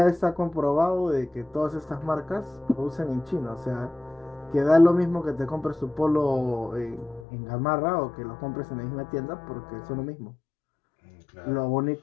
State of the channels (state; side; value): drops out; right; at 7.2 s